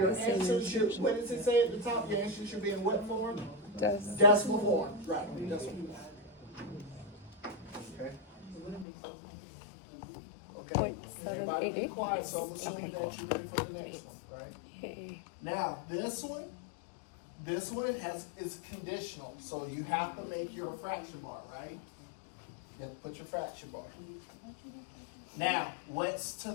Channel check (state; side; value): drops out; right; at 8.8 s